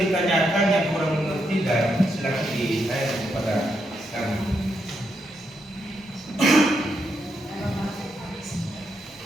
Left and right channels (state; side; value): normal; both; correlation 0.81